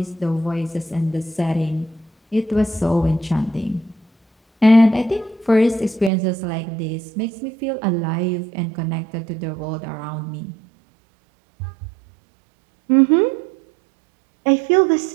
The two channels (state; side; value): drops out; left; at 6.1 s